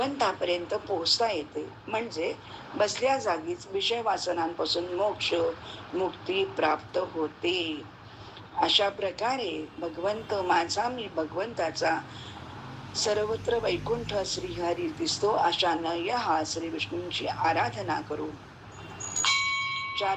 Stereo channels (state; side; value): identical; both; correlation 1.00